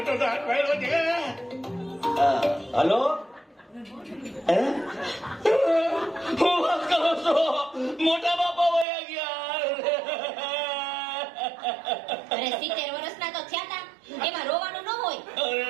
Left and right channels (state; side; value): drops out; left; at 8.8 s